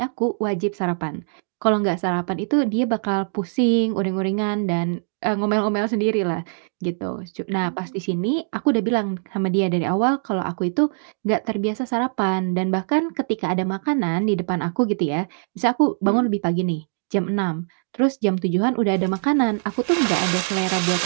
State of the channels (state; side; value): silent; left; digital silence